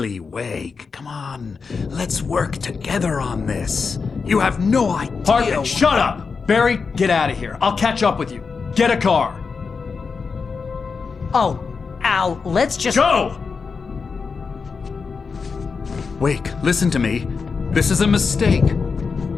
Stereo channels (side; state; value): right; quieter; 5.1 dB